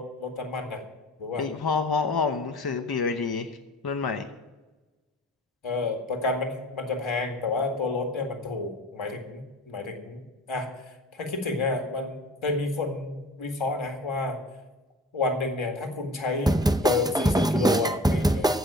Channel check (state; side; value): normal; both; correlation 0.43